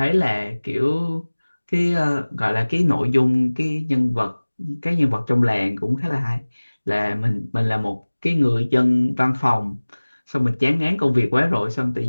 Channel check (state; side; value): inverted; both; correlation -1.00